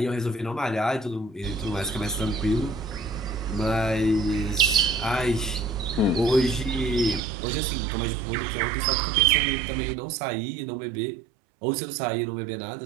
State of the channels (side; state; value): left; drops out; at 7.2 s